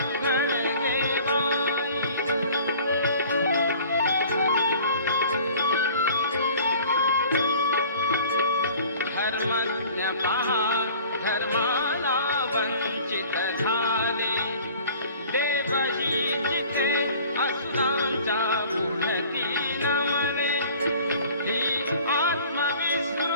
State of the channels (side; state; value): both; inverted; correlation -0.47